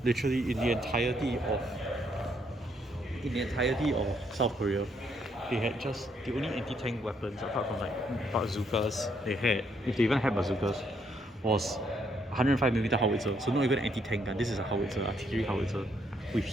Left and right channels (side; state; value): both; normal; correlation 0.72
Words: Literally in the entirety of in the entirety of South Korea, they had just the only anti-tank weapons apart from like bazookas they had, if they even had bazookas, was 105mm howitzer. So not even an anti-tank gun. This is a howitzer, artillery howitzer with